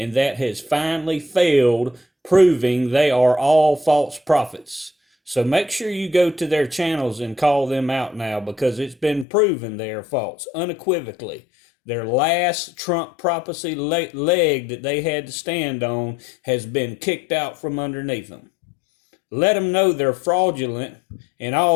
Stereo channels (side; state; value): right; drops out; at 9.2 s